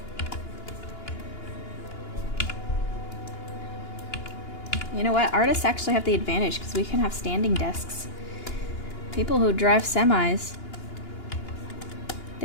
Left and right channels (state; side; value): late; right; 2.9 ms